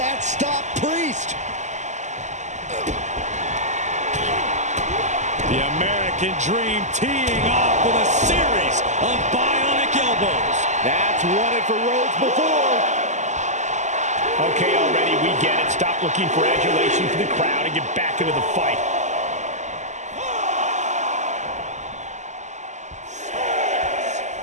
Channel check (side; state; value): left; late; 0.34 ms